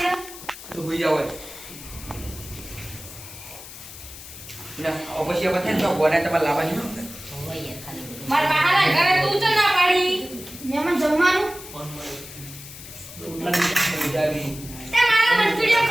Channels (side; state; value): left; noise; hiss, 14 dB below the sound